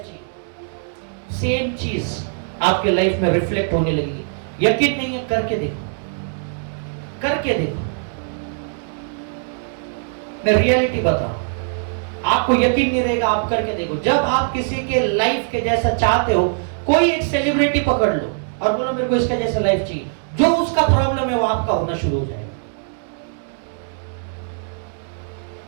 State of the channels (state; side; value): silent; left; digital silence